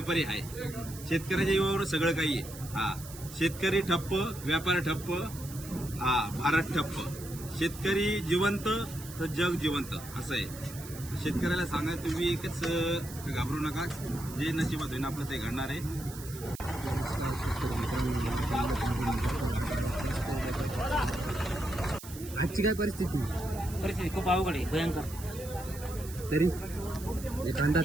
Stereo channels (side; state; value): right; noise; hiss, 14 dB below the sound